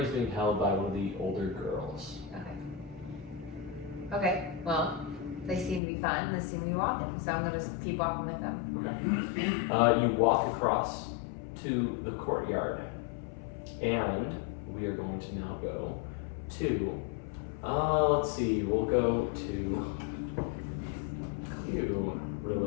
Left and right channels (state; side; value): drops out; right; at 5.8 s